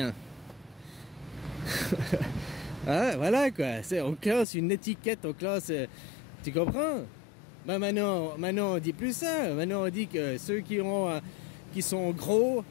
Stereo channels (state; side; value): drops out; right; at 4.5 s